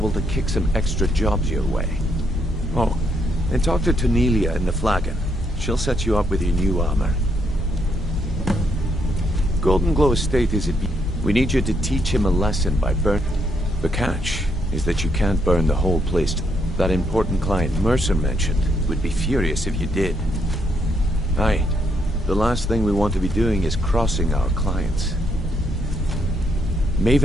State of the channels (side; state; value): both; normal; correlation 0.75